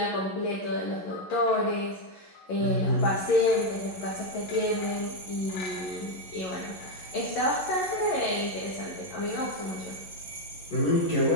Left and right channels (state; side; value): late; right; 11 ms